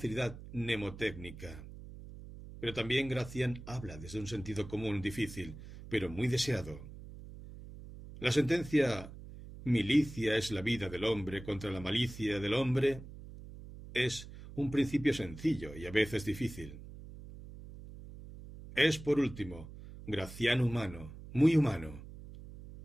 mnemotécnica. Pero también Gracián habla desde un sentido común difícil, pero muy deseado. La sentencia milicia es la vida del hombre contra la malicia del hombre es un principio sencillo y a veces difícil. Es, por último, Gracián humano, muy humano.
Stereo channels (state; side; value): noise; right; hum, 14 dB below the sound